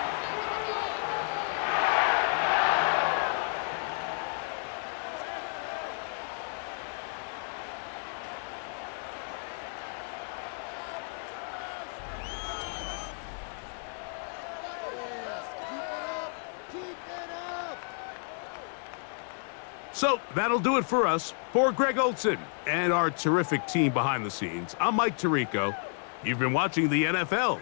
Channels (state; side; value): silent; right; 57 dB below the other